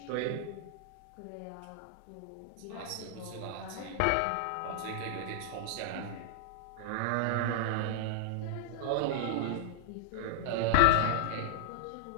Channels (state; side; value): different; both; correlation -0.01